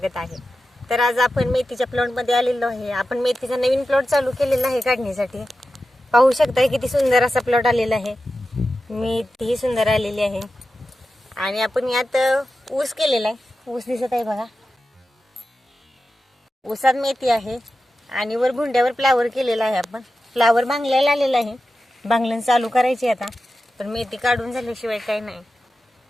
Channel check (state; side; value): normal; both; correlation 0.92